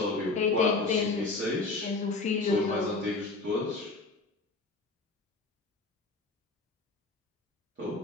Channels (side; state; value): right; quieter; 3.6 dB